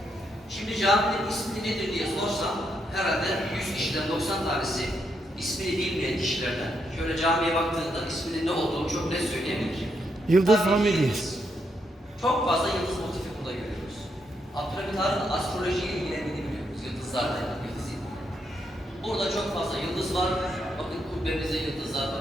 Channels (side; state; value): both; normal; correlation 0.79